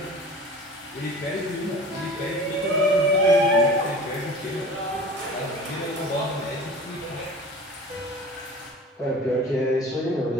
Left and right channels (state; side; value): normal; both; correlation 0.40